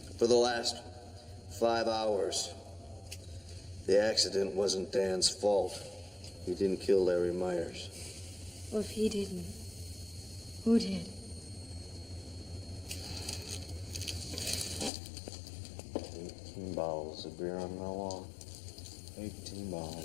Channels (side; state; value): right; drops out; at 14.9 s